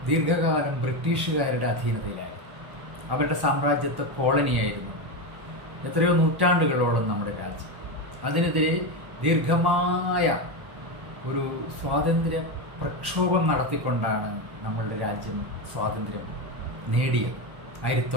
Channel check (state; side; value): late; left; 1.1 ms